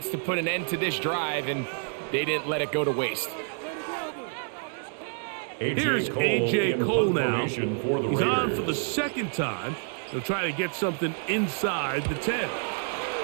to put an end to this drive, and they didn't let it go to waste. Here's A.J. Cole now. He's on for the second time. They'll try to get something inside the 10.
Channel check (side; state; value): left; silent; 56 dB below the other